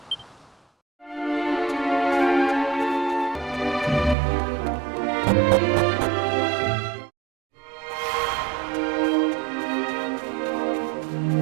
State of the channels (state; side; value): drops out; left; at 4.2 s